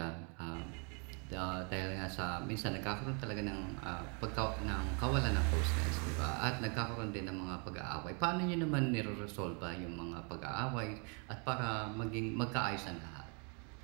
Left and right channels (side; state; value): left; quieter; 36.8 dB